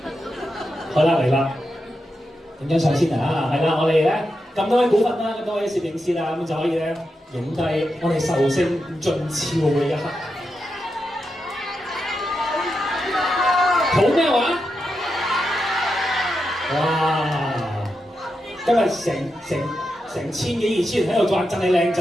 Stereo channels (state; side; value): normal; both; correlation 0.87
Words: 好啦，嚟啦，影張相先啊！係啦，我哋咧咁多位股份啦，咁多位攝影師啦，咁就可以咧影低我哋壽星盡超嘅一刻。好咩話？哇！今日成千幾2000人喺度讚你靚